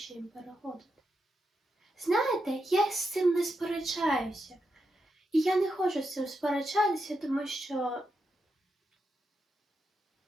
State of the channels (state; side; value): normal; both; correlation 0.85